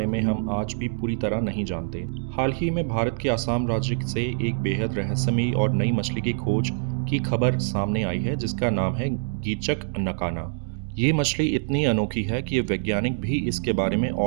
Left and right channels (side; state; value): left; silent; digital silence